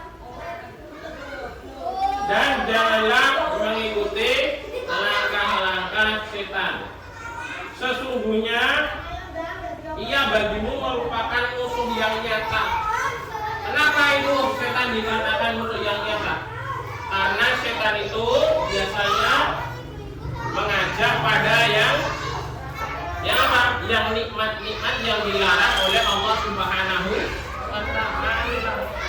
dan janganlah mengikuti langkah-langkah setan. Sesungguhnya ia bagimu merupakan musuh yang nyata. Kenapa itu setan dikatakan musuh yang nyata? Karena setan itu biasanya mengajak pada yang apa? Yang nikmat-nikmat yang dilarang oleh Allah Subhanahu wa Ta'ala.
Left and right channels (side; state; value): both; identical; correlation 1.00